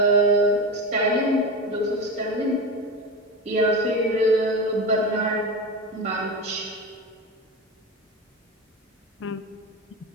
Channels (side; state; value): both; normal; correlation 0.22